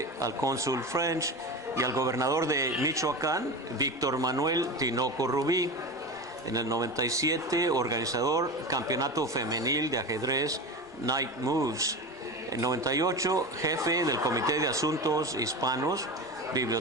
al cónsul French y al gobernador de Michoacán, Víctor Manuel Tinoco Rubí. En el 97, organizador Campeonato Femenil de Ajedrez Night Moves. En 98, jefe del Comité de Asuntos Hispanos,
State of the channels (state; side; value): normal; both; correlation 0.26